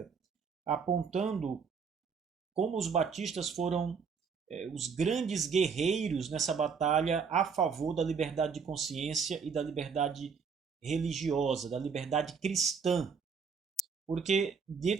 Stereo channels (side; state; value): left; quieter; 5.8 dB